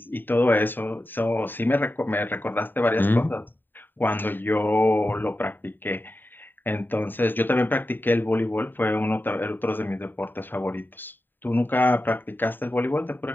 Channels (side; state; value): right; late; 0.093 ms